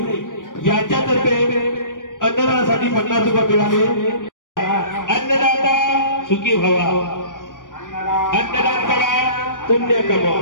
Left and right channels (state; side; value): late; right; 0.88 ms